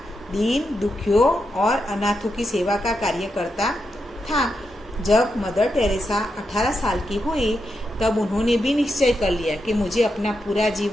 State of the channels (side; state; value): both; normal; correlation 0.85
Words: दीन दुखियों और अनाथों की सेवा का कार्य करता था। जब मदर टेरेसा 18 साल की हुई, तब उन्होंने भी निश्चय कर लिया कि मुझे अपना पूरा